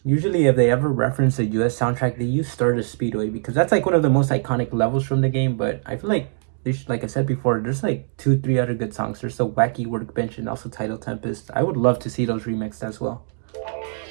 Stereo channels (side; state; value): left; silent; 64 dB below the other